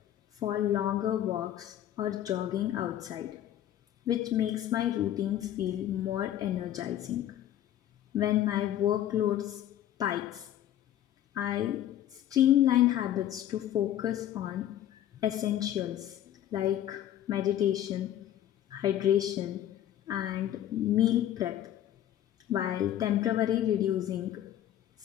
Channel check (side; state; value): right; quieter; 11.8 dB